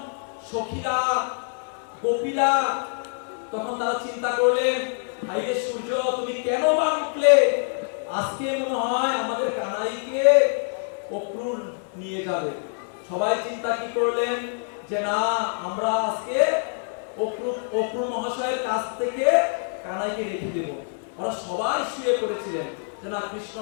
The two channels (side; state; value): right; silent; 59 dB below the other